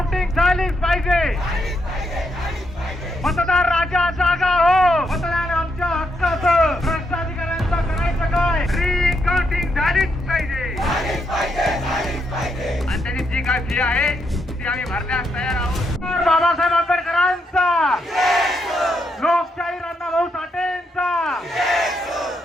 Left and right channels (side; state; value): both; normal; correlation 0.79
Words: झालीच पाहिजे. मतदार राजा जागा हो. मतदान आमच्या हक्काचं. भ्रष्टाधिकाऱ्यांचं करायचं काय? रिकाउंटिंग झालीच पाहिजे. आणि त्याची जी काय फी आहे ती आम्ही भरण्यास तयार आहोत. बाबासाहेब आंबेडकरांचा, लोकशाही अण्णाभाऊ साठेंचा,